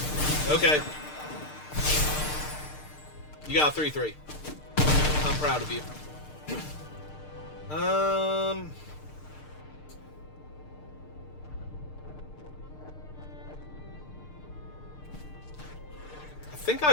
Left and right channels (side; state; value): right; late; 6.6 ms